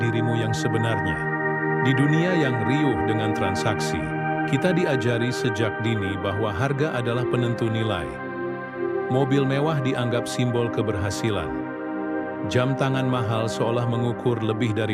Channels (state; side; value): identical; both; correlation 1.00